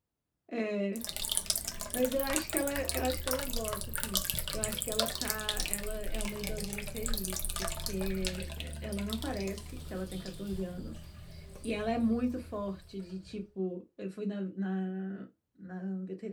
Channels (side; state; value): both; identical; correlation 1.00